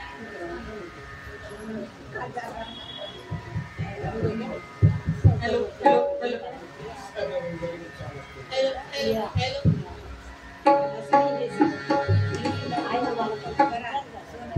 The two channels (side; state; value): both; identical; correlation 1.00